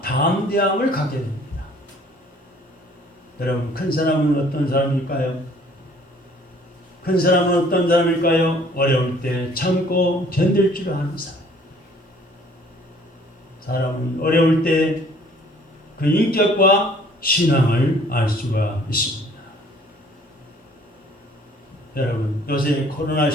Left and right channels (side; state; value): both; normal; correlation 0.56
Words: 담대함을 갖게 됩니다. 여러분, 큰 사람은 어떤 사람일까요? 큰 사람은 어떤 사람일까요? 어려울 때 참고 견딜 줄 아는 사람. 사람은 어려울 때 그 인격과 신앙을 알 수가 있습니다. 여러분, 요새 코로나